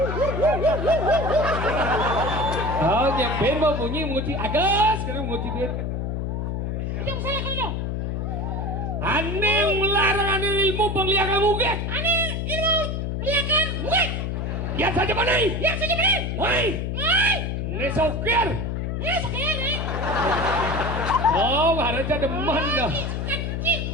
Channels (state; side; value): noise; left; hum, 2 dB below the sound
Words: Oh, yang ben mau bunyi menguci agas, sekarang menguci duit. Yang saya kalau Ane melarang ane ilmu pemeliharaan ugek. Ane ilmu peliharaan ugek. Yang saja boleh. Woi. Ini sokir. Sekali. Oh, harusnya demen dah.